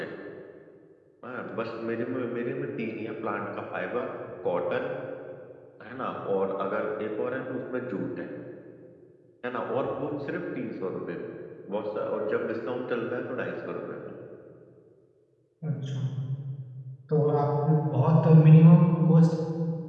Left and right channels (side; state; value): both; identical; correlation 1.00